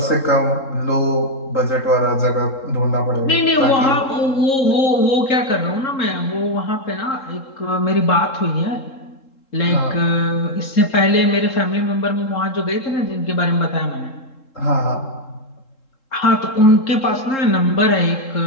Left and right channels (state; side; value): late; right; 3.7 ms